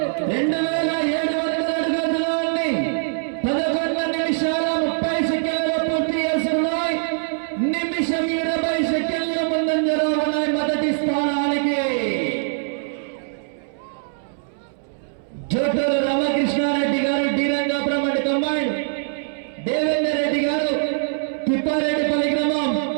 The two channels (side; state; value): left; silent; 64 dB below the other